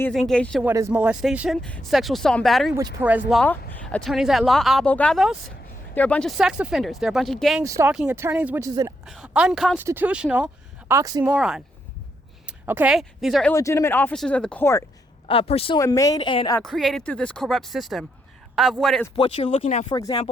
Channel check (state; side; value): normal; both; correlation 0.79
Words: is engaged in what is molestation, sexual assault and battery, which Perez Law, attorneys at law, abogados, they're a bunch of sex offenders. They're a bunch of gang stalking attorneys, which is an unconstitutional oxymoron. Okay? These are illegitimate officers of the court, made and created through this corrupt system of what you're looking at, for